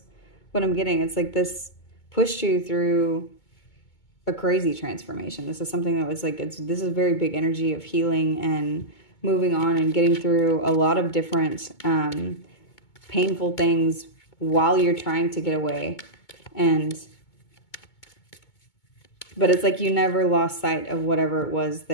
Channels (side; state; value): right; late; 2.2 ms